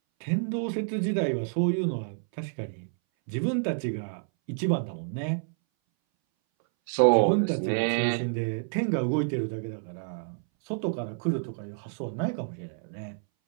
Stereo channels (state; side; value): silent; left; 59 dB below the other